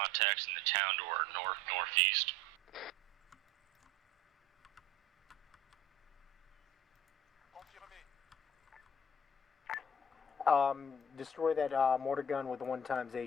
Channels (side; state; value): both; normal; correlation 0.47